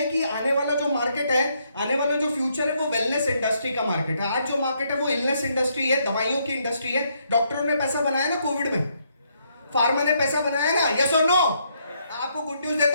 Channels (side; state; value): both; inverted; correlation -0.74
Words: कि आने वाला जो मार्केट है, आने वाला जो फ्यूचर है, वो वेलनेस इंडस्ट्री का मार्केट है। आज जो मार्केट है वो इलनेस इंडस्ट्री है, दवाइयों की इंडस्ट्री है। डॉक्टरों ने पैसा बनाया ना कोविड में, फार्मा ने पैसा बनाया ना, यस और नो। आपको गुड न्यूज